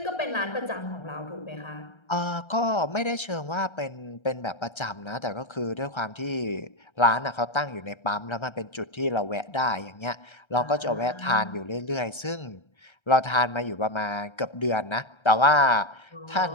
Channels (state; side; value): late; right; 1.3 ms